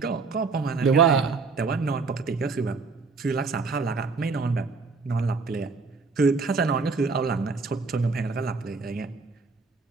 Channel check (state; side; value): quieter; left; 4.4 dB